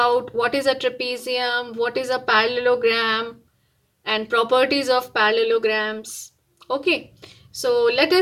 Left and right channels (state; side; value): identical; both; correlation 1.00